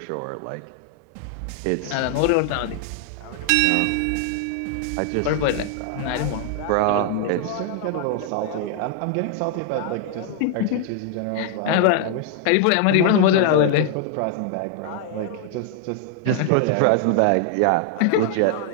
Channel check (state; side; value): different; both; correlation 0.00